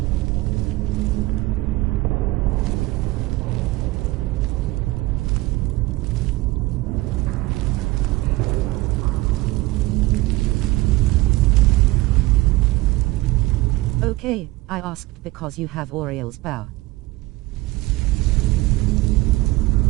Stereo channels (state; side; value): quieter; left; 20.1 dB